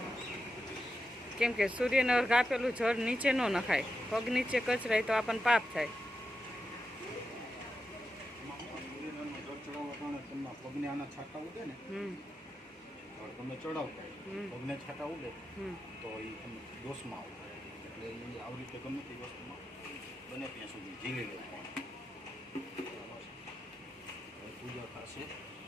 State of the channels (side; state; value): both; normal; correlation 0.88